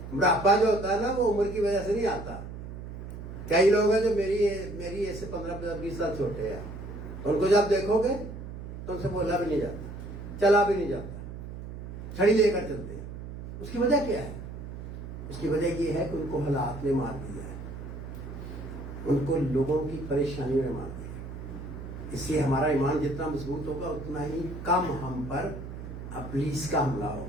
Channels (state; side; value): noise; right; hum, 10 dB below the sound